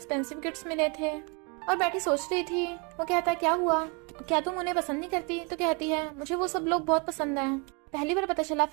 गिफ्ट्स मिले थे और बैठी सोच रही थी। वो कहता है, क्या हुआ, क्या तुम उन्हें पसंद नहीं करती? तो कहती है, मुझे वो सब लोग बहुत पसंद है, पहली बार पता चला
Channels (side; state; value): left; quieter; 33.0 dB